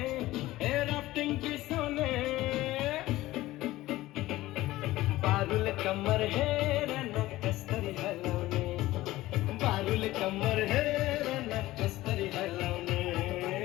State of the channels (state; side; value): quieter; right; 17.0 dB